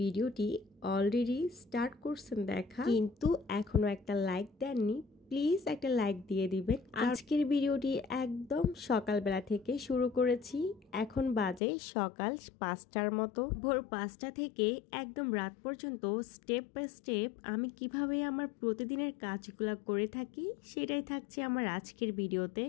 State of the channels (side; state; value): right; drops out; at 11.6 s